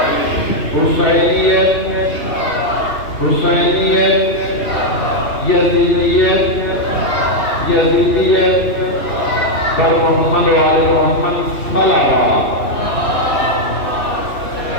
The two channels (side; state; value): right; late; 2.9 ms